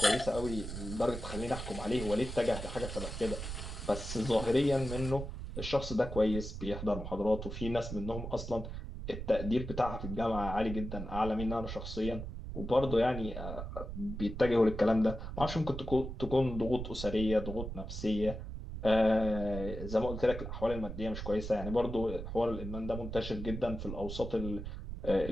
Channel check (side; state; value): right; noise; rumble, 7 dB below the sound